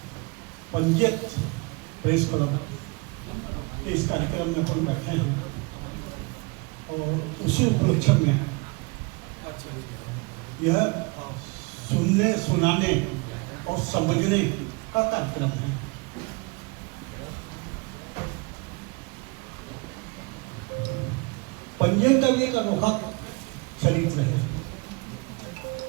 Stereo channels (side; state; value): left; quieter; 27.7 dB